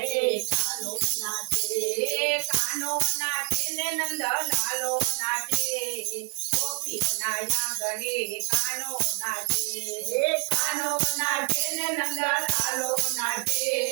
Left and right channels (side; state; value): left; quieter; 39.8 dB